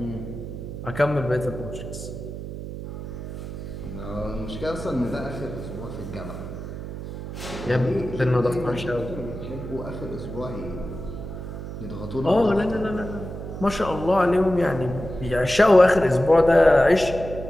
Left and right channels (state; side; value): noise; right; hum, 9 dB below the sound